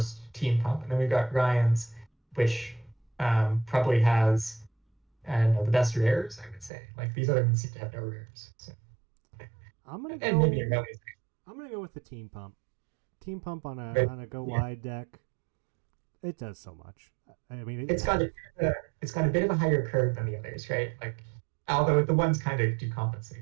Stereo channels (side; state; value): left; drops out; at 6.7 s